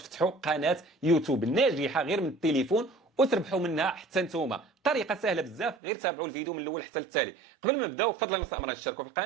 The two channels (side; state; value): left; drops out; at 5.8 s